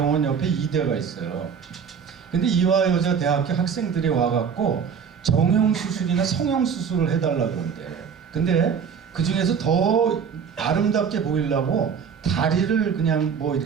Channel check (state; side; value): quieter; left; 6.8 dB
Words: 옆에 이대가 있어요. 근데 이화여자 대학교 학생들이 와갖고 정형수술이나 성형수술을 해달라고 그런대. 근데 그 중에서 더 아름답게 보이려고 다리를 그냥 뭐